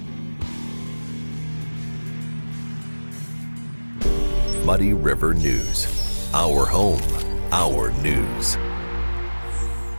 Muddy River News. Our home, our news.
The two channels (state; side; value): inverted; both; correlation -1.00